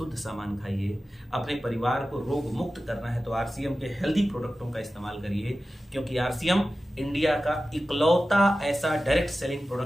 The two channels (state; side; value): normal; both; correlation 0.94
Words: सामान खाइए, अपने परिवार को रोग मुक्त करना है तो आरसीएम के हेल्दी प्रोडक्टों का इस्तेमाल करिए, क्योंकि आरसीएम इंडिया का इकलौता ऐसा डायरेक्ट सेलिंग